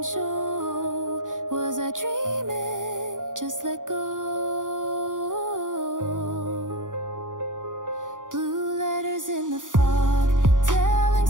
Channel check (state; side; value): late; left; 0.88 ms